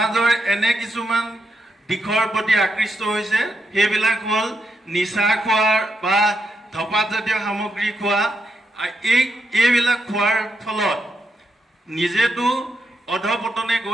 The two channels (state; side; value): normal; both; correlation 0.82